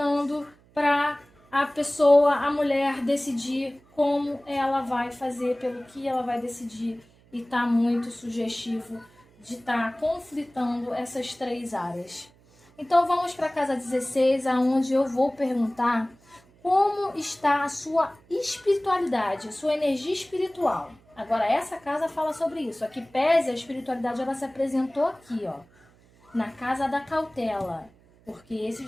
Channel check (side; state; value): right; noise; hum, 29 dB below the sound